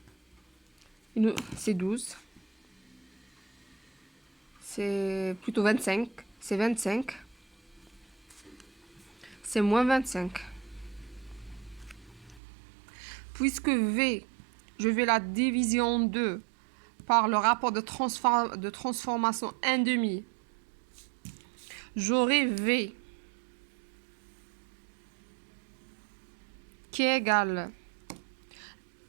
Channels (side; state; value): left; drops out; at 12.4 s